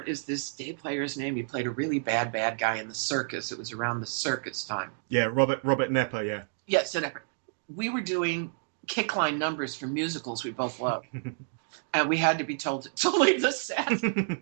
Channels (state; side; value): silent; left; digital silence